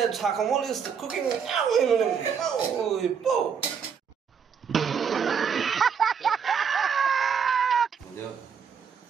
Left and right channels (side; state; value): left; quieter; 6.8 dB